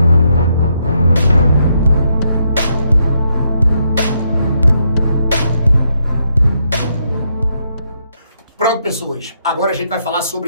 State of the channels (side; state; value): both; inverted; correlation -0.77